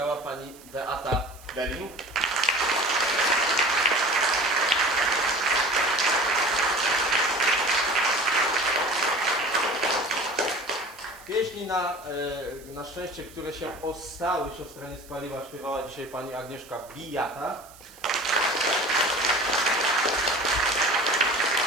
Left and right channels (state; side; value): noise; right; hiss, 22 dB below the sound